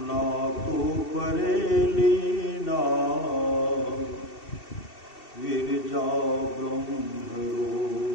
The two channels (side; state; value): right; late; 2.7 ms